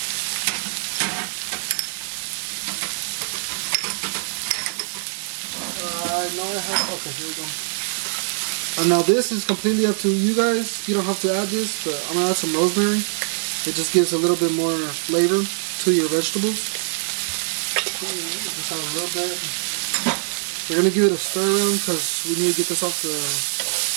I know I have, okay, here we go. And now this is completely up to you guys. You don't have to add this, but I'm gonna add some rosemary. It just gives a little bit more flavor to your vegetables. Just add a little bit. We're gonna give it a stir around because we need to get this off the,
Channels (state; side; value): silent; left; digital silence